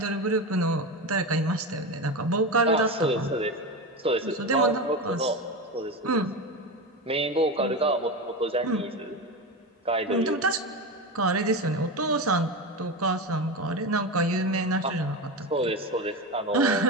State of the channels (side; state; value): both; normal; correlation 0.20